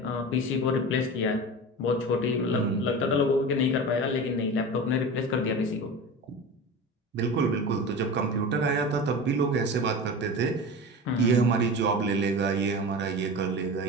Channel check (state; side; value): normal; both; correlation 0.30